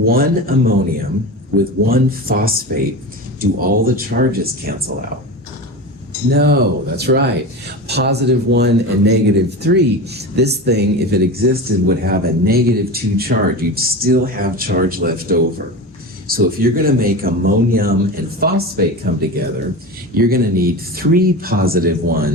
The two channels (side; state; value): both; normal; correlation 0.27